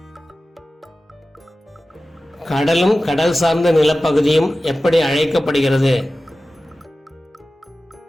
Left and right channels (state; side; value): normal; both; correlation 0.95